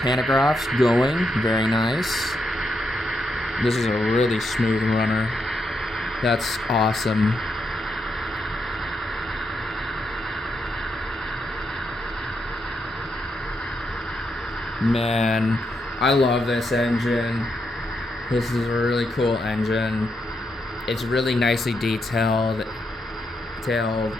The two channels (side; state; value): both; normal; correlation 0.81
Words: going, very nice. This is a really smooth runner. That's awesome. Man, I love this engine. This is a really cool engine. It's really nicely detailed.